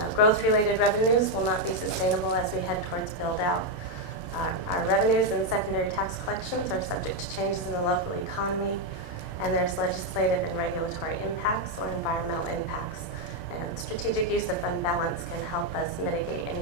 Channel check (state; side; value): late; right; 29 ms